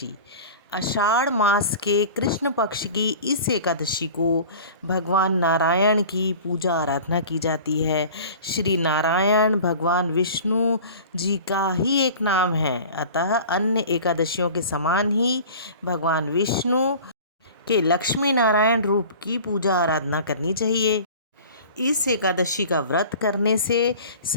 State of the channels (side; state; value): both; inverted; correlation -0.41